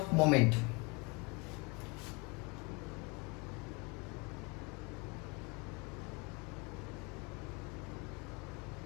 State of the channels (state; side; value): quieter; right; 28.7 dB